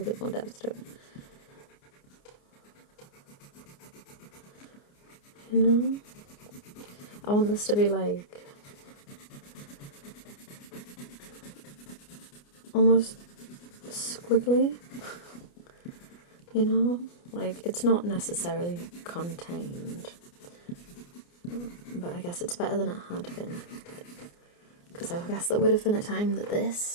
bit more depth to it. You know? I want this to be like almost squiggly, you know? Like, it's not necessarily contained, but I guess it's better than it had been. Because I guess there would have been a time that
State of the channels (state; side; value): late; right; 29 ms